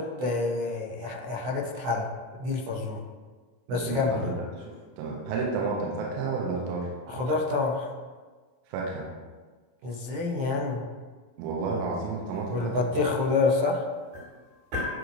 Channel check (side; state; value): left; late; 24 ms